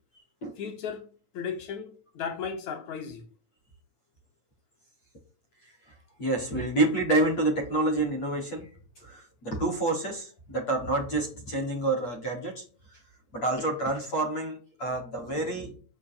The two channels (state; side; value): late; right; 8.4 ms